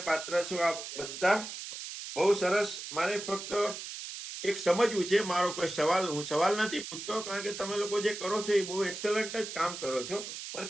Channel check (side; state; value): right; noise; hiss, 9 dB below the sound